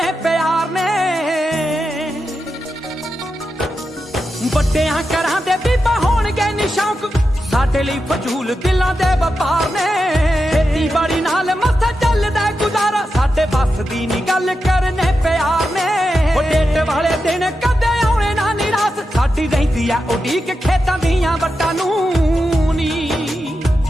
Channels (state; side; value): normal; both; correlation 0.89